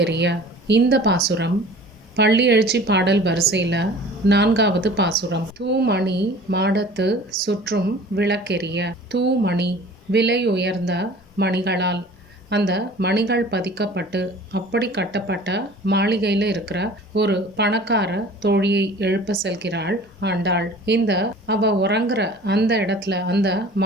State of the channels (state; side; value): normal; both; correlation 0.45